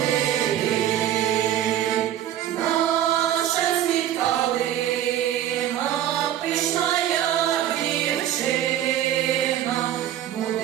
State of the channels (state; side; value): quieter; left; 11.5 dB